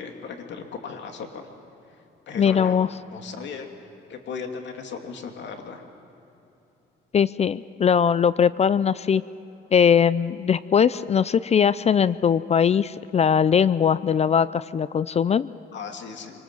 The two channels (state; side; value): quieter; right; 7.1 dB